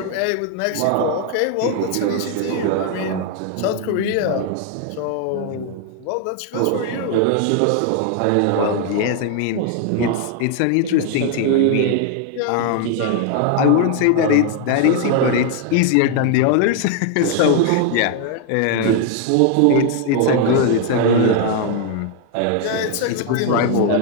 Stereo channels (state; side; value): different; both; correlation 0.00